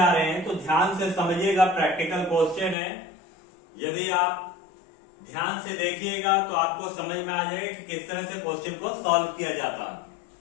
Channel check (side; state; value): right; drops out; at 2.8 s